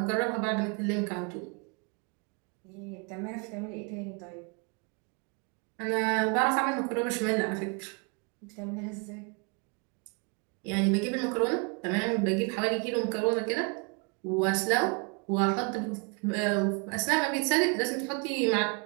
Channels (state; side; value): quieter; left; 34.2 dB